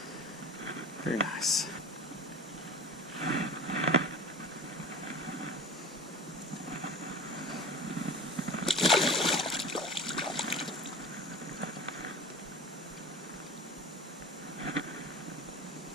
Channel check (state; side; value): normal; both; correlation 0.36